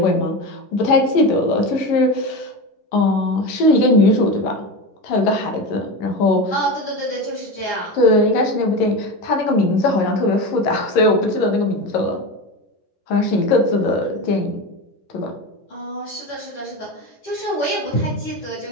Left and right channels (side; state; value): right; late; 11 ms